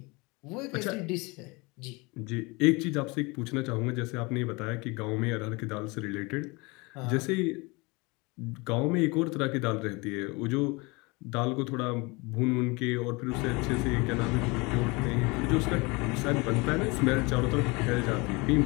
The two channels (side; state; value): right; quieter; 26.3 dB